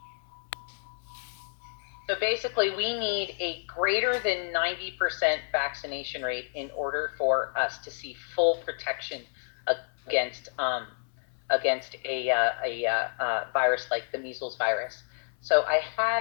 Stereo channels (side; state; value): right; silent; 58 dB below the other